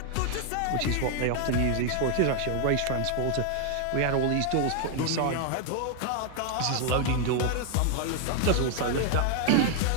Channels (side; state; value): both; different; correlation 0.00